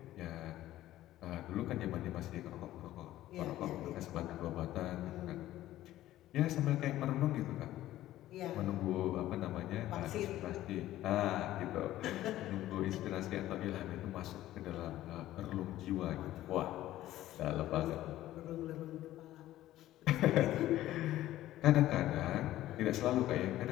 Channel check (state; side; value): quieter; right; 14.4 dB